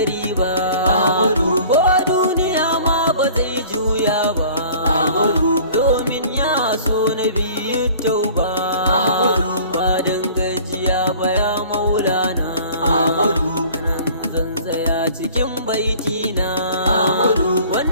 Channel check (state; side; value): inverted; both; correlation -0.48